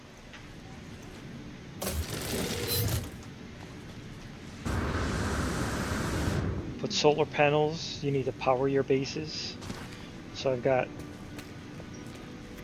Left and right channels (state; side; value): identical; both; correlation 1.00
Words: Put solar panels. You need to power your bases. So I've got